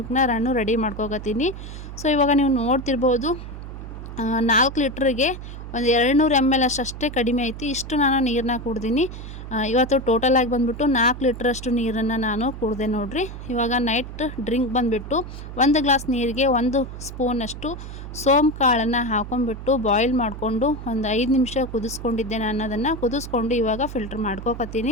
ನಾನು ರೆಡಿ ಮಾಡ್ಕೋಕತ್ತೀನಿ. ಸೊ ಇವಾಗ ನೀವು ನೋಡ್ತಿರ್ಬೋದು 4 ಲೀಟ್ರಿಗೆ ಒಂದು 200 ml ಅಷ್ಟೇ ಕಡಿಮೆ ಐತಿ. ಇಷ್ಟು ನಾನು ನೀರನ್ನ ಕುಡ್ದೀನಿ. ಇವತ್ತು ಟೋಟಲಾಗಿ ಬಂದುಬಿಟ್ಟು 4 ಲೀಟ್ರಷ್ಟು ನೀರನ್ನು ನಾನು ಕುಡಿದೆ ನೋಡಿರಿ. ಇವಾಗ ನೈಟ್ ಡ್ರಿಂಕ್ ಬಂದುಬಿಟ್ಟು 1 ಗ್ಲಾಸ್ ನೀರಿಗೆ 1 ಸ್ಪೂನಷ್ಟು ಸೋಂಪು ಕಾಳನ್ನು ಹಾಕೊಂಡ್ಬಿಟ್ಟು ಬಾಯ್ಲ್ ಮಾಡಿಕೊಂಡು ಒಂದು 5 ನಿಮಿಷ ಕುದಿಸ್ಕೊಂಡಿದ್ದೆ. ನಾನು ಅದನ್ನು ಕುದಿಸ್ಕೊಂಡು ಇವಾಗ ಫಿಲ್ಟ್ರ್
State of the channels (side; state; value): right; noise; hum, 10 dB below the sound